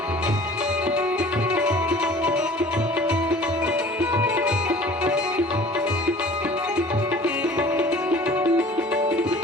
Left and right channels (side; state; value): both; normal; correlation 0.47